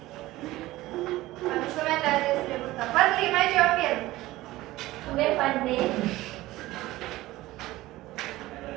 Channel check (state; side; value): quieter; left; 17.5 dB